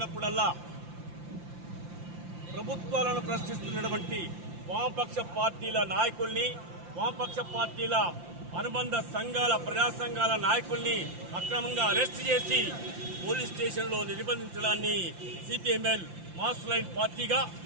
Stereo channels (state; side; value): late; left; 5.8 ms